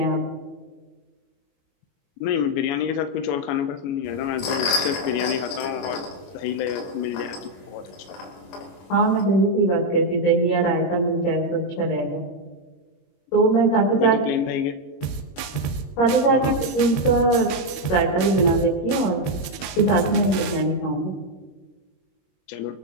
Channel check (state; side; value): late; right; 21 ms